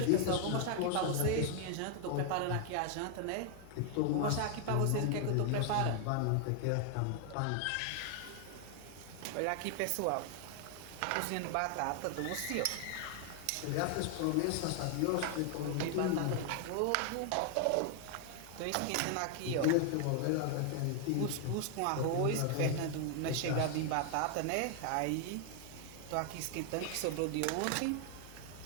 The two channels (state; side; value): different; both; correlation 0.00